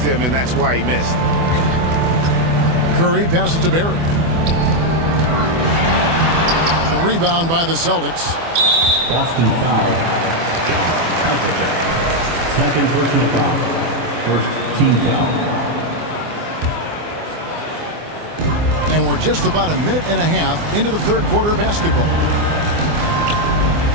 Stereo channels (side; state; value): left; late; 24 ms